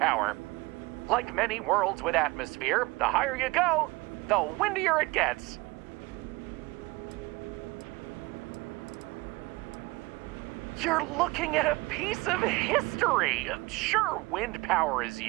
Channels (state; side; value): quieter; left; 22.7 dB